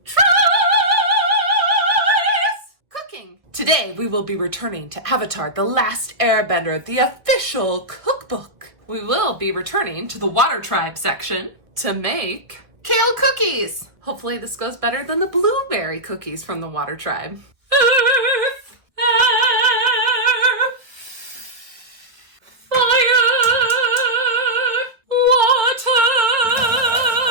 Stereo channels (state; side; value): late; left; 1.5 ms